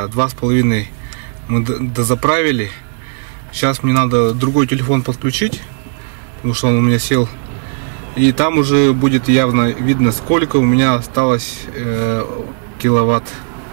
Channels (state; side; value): silent; left; 65 dB below the other